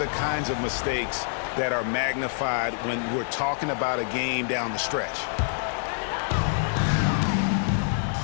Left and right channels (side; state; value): right; silent; 61 dB below the other